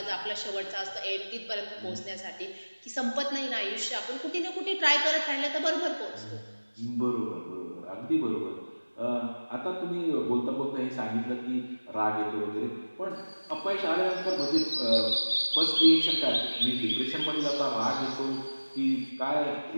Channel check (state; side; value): inverted; both; correlation -1.00